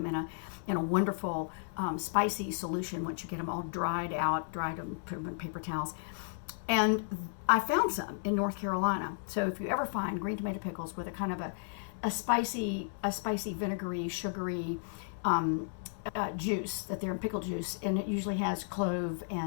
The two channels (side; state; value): right; silent; 55 dB below the other